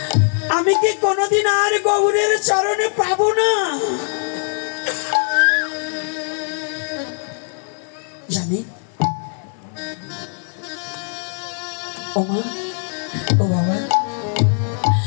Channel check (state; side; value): silent; right; 58 dB below the other